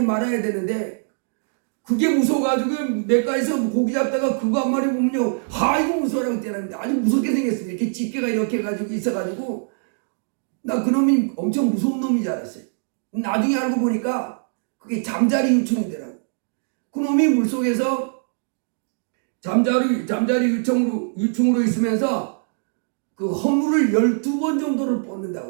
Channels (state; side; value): silent; left; digital silence